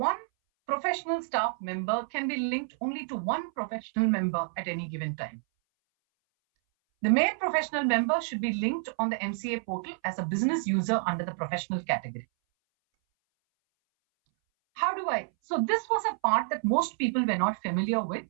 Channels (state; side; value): silent; left; 59 dB below the other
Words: professional staff member can be linked only to one professional member at any given time. The main professional member should be linked on the MCA portal as a business user under the professional category. How do I? So this was a part that most people were not familiar with.